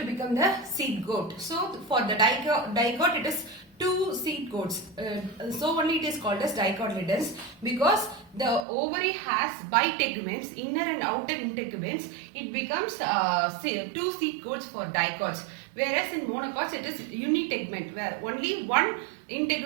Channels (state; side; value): drops out; left; at 8.7 s